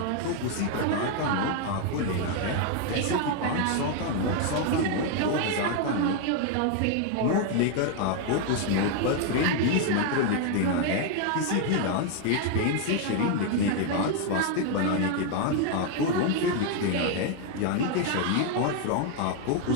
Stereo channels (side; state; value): both; different; correlation 0.01